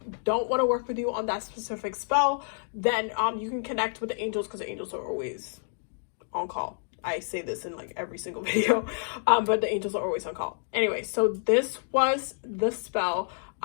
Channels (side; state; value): right; silent; digital silence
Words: don't want to work with you on that specific spell, then you can connect with the angels, because the angels are always on call. I say this in like every single video, but the angels are always on call. Anyway, so this was the spell.